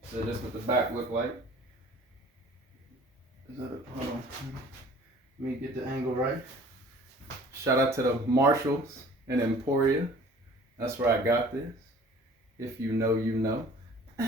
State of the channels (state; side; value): normal; both; correlation 0.49